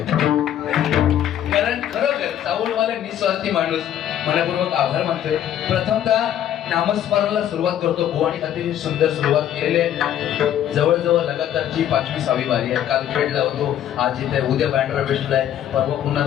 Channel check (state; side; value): quieter; right; 10.8 dB